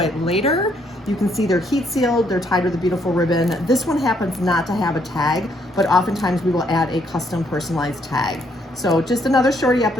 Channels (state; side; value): normal; both; correlation 0.70